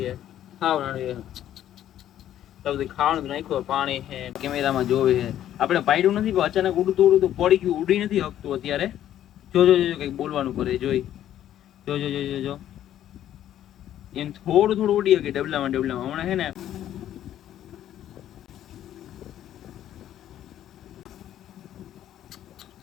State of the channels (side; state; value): right; quieter; 11.6 dB